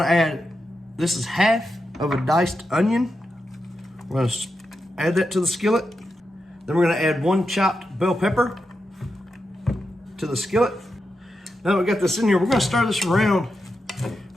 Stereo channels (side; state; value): both; normal; correlation 0.88